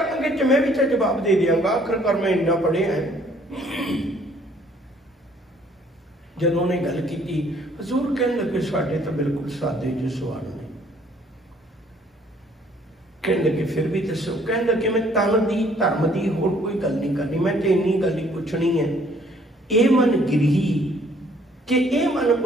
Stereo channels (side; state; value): both; normal; correlation 0.61